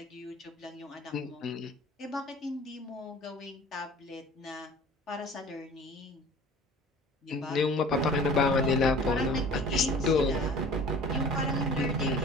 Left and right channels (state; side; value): normal; both; correlation 0.45